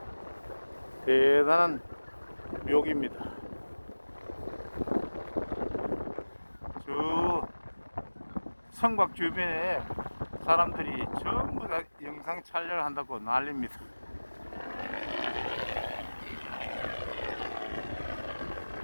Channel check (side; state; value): both; inverted; correlation -1.00